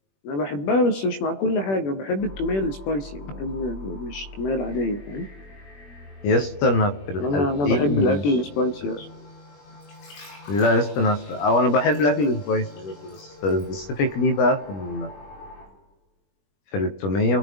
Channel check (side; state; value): right; late; 21 ms